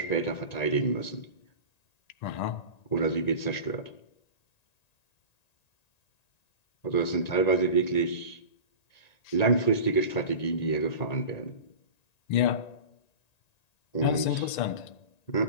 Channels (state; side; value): late; right; 1.9 ms